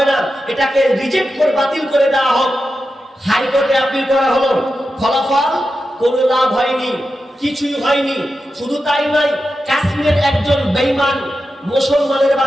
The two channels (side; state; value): both; normal; correlation 0.90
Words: না, এটাকে রিজেক্ট করে বাতিল করে দেওয়া হোক। হাইকোর্টে আপিল করা হলো, ফলাফল কোনো লাভ হয়নি, কিছুই হয়নি। শুধু তাই নয়, কাশ্মীরের একজন বেঈমান মুসলমানের